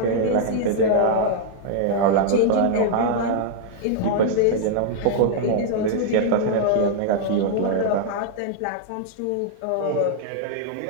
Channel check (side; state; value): both; different; correlation -0.01